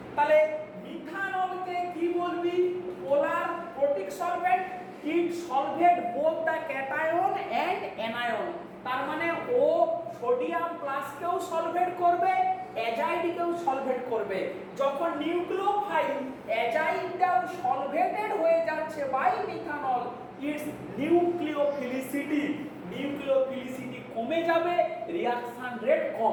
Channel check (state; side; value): identical; both; correlation 1.00